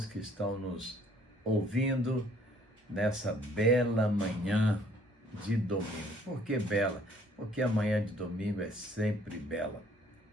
que estão nos ouvindo nessa bela manhã de domingo. Por que bela? Porque a manhã de domingo é sempre bela.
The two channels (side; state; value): both; normal; correlation 0.60